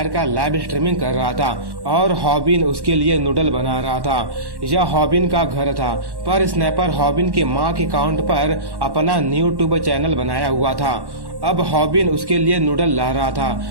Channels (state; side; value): late; left; 1.1 ms